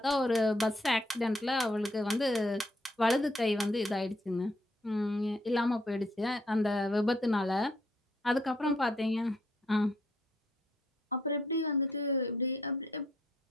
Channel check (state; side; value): normal; both; correlation 0.70